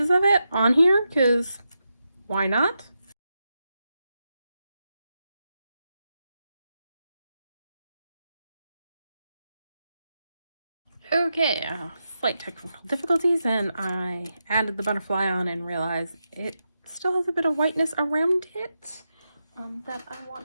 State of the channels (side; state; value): both; inverted; correlation -0.87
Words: of it on here because why not? Okay, slight technical difficulties, and I added the butterfly on and realized it still has a bit of whiteness around it that I